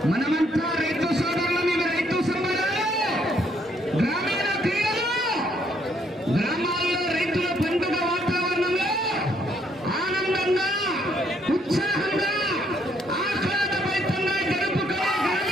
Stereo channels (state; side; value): normal; both; correlation 0.70